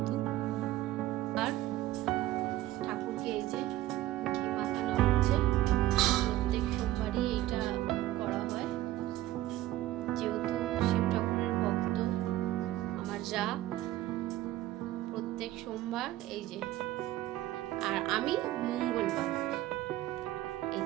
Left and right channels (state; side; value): quieter; left; 15.1 dB